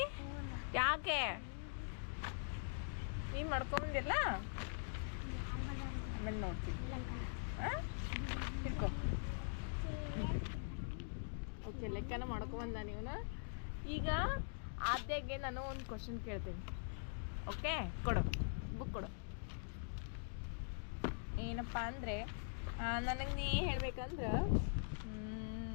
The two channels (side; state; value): right; silent; digital silence